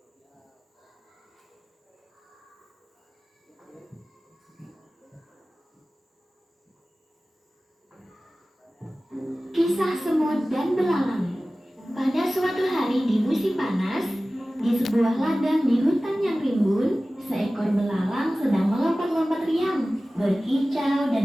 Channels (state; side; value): normal; both; correlation 0.97